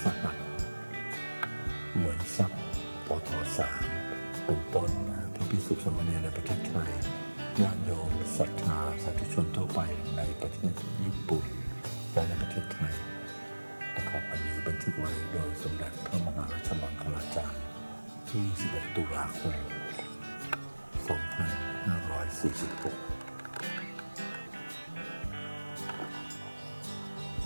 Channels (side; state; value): both; inverted; correlation -1.00